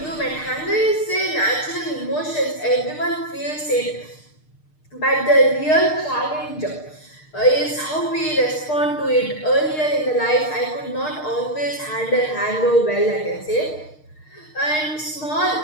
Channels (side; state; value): right; late; 6.5 ms